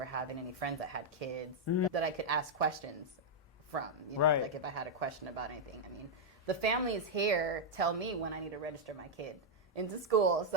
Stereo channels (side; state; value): both; normal; correlation -0.03